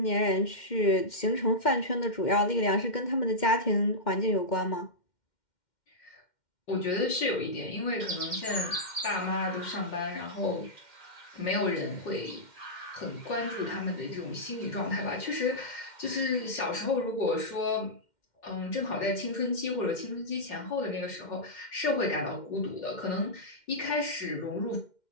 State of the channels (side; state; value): right; late; 2.1 ms